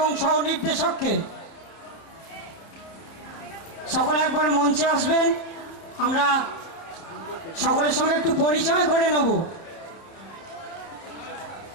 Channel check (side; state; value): right; late; 30 ms